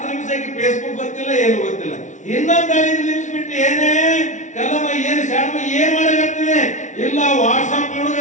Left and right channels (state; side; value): late; right; 0.36 ms